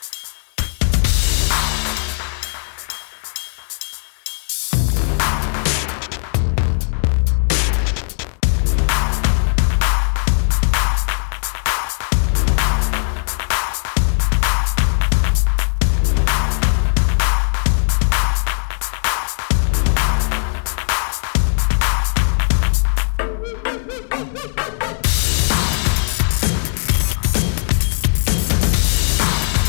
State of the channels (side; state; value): right; silent; 60 dB below the other